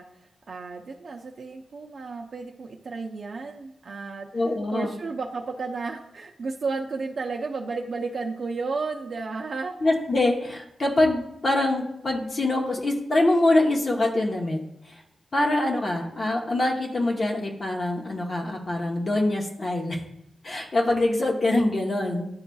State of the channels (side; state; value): both; normal; correlation 0.91